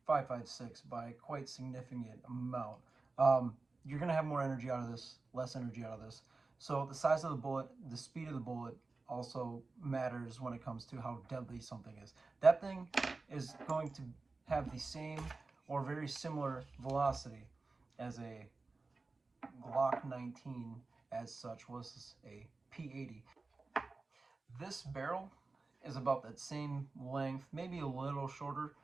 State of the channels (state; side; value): quieter; left; 3.7 dB